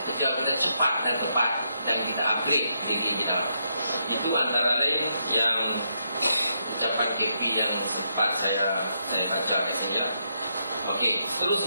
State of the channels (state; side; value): inverted; both; correlation -0.79